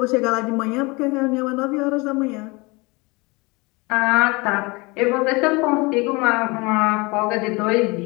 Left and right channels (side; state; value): right; quieter; 25.8 dB